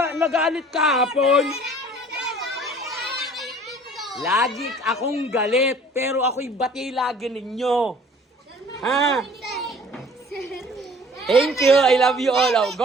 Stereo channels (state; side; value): normal; both; correlation 0.51